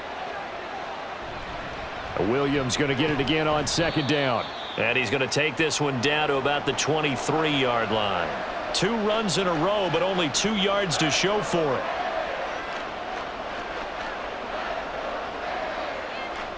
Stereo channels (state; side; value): identical; both; correlation 1.00